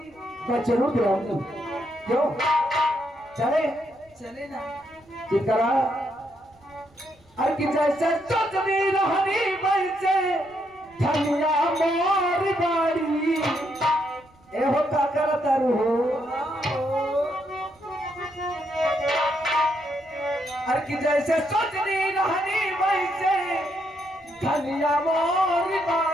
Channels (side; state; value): right; noise; rumble, 30 dB below the sound